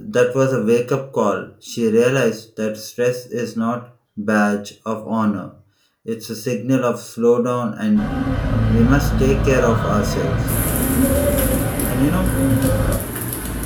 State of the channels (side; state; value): both; identical; correlation 1.00